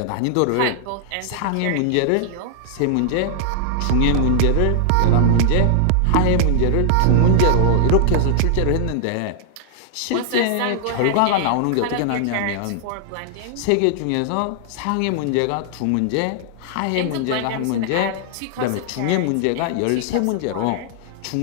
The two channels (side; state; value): both; different; correlation 0.00